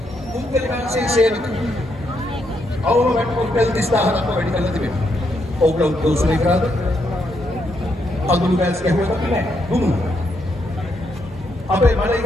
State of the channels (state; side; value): normal; both; correlation 0.78